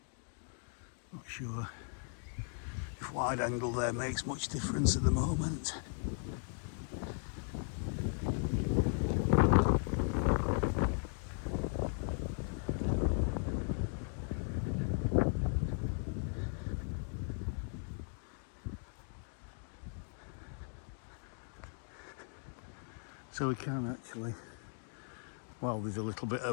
Not sure if wide angle there makes much difference at the moment. So we can actually Well, there's a little bit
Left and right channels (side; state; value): right; silent; 53 dB below the other